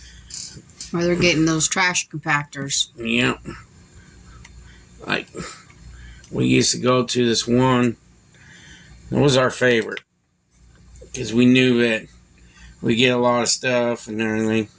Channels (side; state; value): both; identical; correlation 1.00